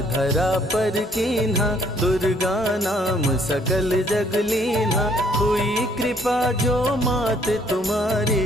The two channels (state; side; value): normal; both; correlation 0.64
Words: धरा पर कीन्हा, दुर्गा नाम सकल जग लीन्हा, हुई कृपा जो मात तुम्हारी,